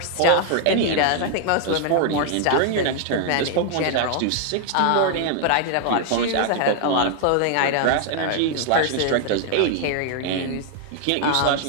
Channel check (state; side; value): different; both; correlation 0.00